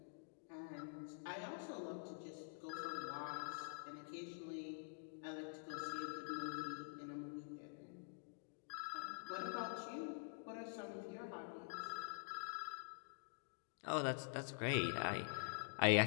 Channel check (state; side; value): silent; right; digital silence